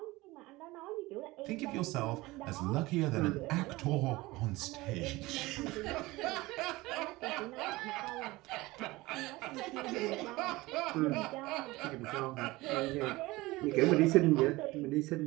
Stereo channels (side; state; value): left; quieter; 20.4 dB